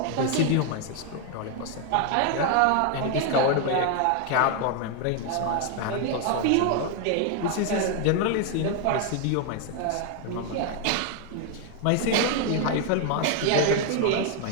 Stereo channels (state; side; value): different; both; correlation 0.00